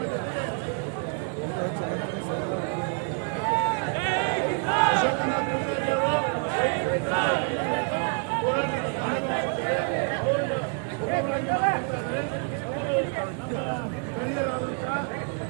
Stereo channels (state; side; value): quieter; left; 39.7 dB